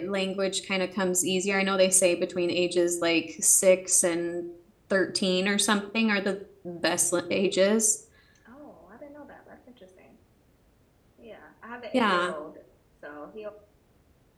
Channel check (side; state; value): both; identical; correlation 1.00